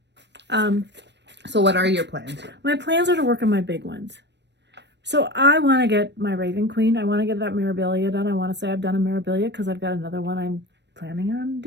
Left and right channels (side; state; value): left; late; 0.50 ms